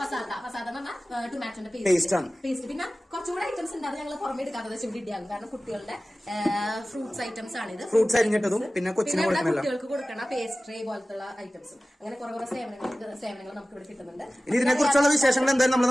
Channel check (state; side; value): normal; both; correlation 0.97